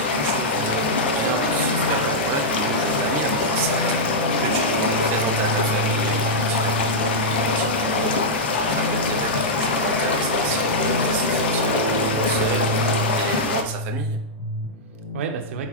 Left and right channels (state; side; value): normal; both; correlation -0.07